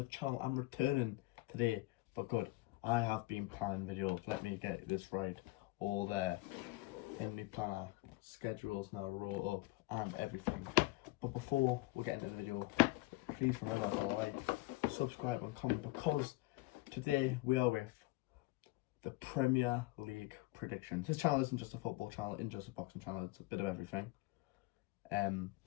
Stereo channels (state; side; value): quieter; right; 20.7 dB